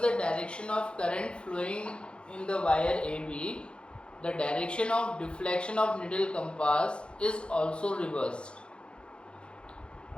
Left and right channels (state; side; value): late; right; 0.055 ms